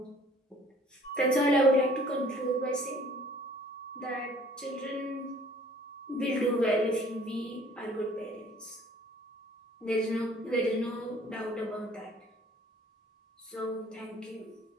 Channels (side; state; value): both; normal; correlation 0.54